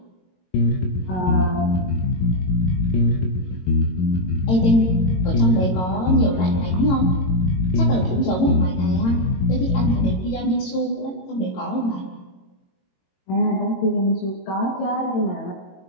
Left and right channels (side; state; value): right; late; 22 ms